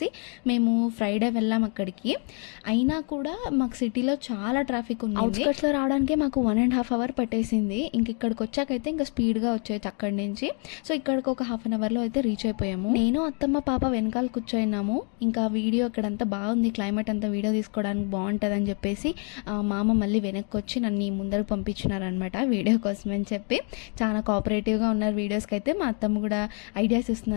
మేము ఫ్రైడే వెళ్ళాం అక్కడికి. అయినా కూడా మాకు సిటీలో చాలా ట్రాఫిక్ ఉంది. అవుట్స్కట్స్లో రావడానికి మాకు 1.5 hour పట్టేసింది. ఇంక ఇక్కడికి వచ్చాకైతే ఇంకా స్పీడ్గా వచ్చేది అక్కడి నుంచి. సో ఇక్కడికి ఒక 1/2 hourలో అయితే రీచ్ అయిపోయాము. నేను, అత్తమ్మ, పాప వెనకాల కూర్చోయినాము. ఇంకా వీడియో ఇక్కడంతా బాగుంది, క్లైమేట్ అంతా వీడియో తీసుకోవడానికి బాగుంటుంది అని చెప్పేసి మామ మళ్ళీ వెనక్కి వచ్చి నన్ను ముందరకు పంపించినారనమాట వీడియో కోసం అని చెప్పి. చాలా కోఆపరేటివ్గా ఉన్నారు వీడియోస్కి అయితే. మా అత్తమ్మ కూడా ఐడియాస్ ఇస్తుంది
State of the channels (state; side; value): quieter; right; 38.8 dB